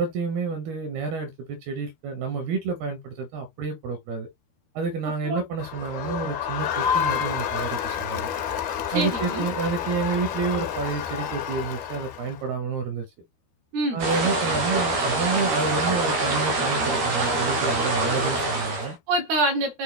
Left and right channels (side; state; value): left; late; 13 ms